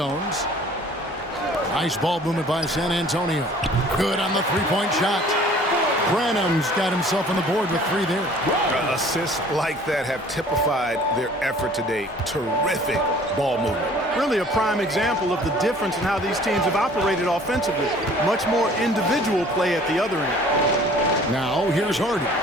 Nice ball movement by San Antonio. Good on the 3-point shot. Branham's got himself on the board with 3 there. Assists like that have typified their effort today. Terrific ball movement. Really a prime example of the difference in how these teams have operated offensively. Much more individual play at the other end. Now here's Hardy.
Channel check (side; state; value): both; normal; correlation 0.51